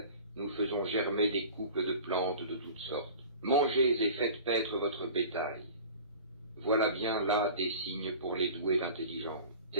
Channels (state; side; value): inverted; both; correlation -0.40